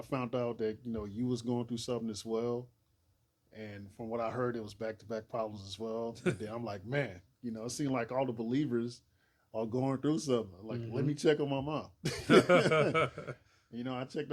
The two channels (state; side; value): identical; both; correlation 1.00